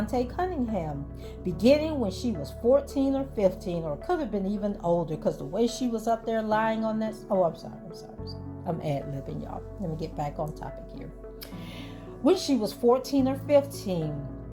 Cunningham, beginning when she was 14 or 15, or could have been even older, because the way she was up there lying on that... I'm sorry. I'm ad-libbing, y'all. Let me get back on topic here. When she was 14 or 15,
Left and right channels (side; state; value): both; identical; correlation 1.00